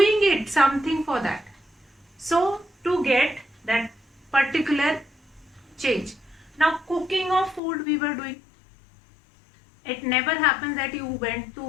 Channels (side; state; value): right; drops out; at 7.6 s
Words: it something for that. So to get that particular change. Now cooking of food we were doing. It never happens that you went